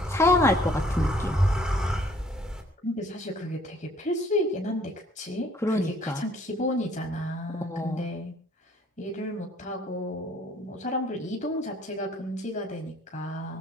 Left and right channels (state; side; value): normal; both; correlation 0.59